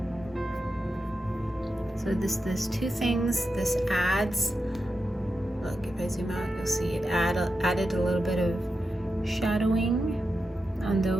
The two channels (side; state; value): both; normal; correlation 0.89